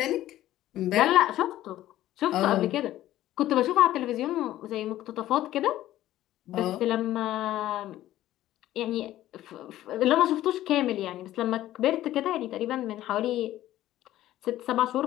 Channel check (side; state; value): right; quieter; 14.1 dB